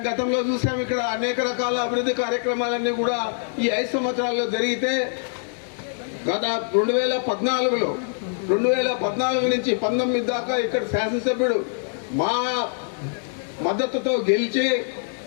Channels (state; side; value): silent; right; 63 dB below the other